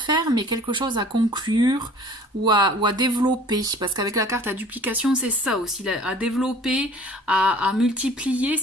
mais quelque chose à conclure ou à développer, parce qu'avec la carte à duplication, c'est ça aussi, à développer, à multiplier.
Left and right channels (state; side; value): normal; both; correlation 0.48